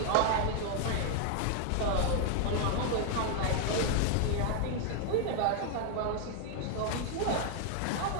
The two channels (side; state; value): both; different; correlation 0.00